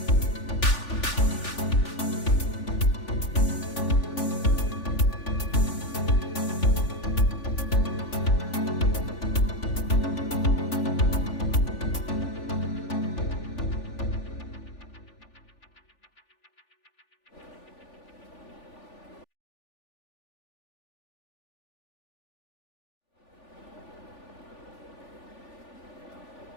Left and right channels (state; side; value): late; right; 3.4 ms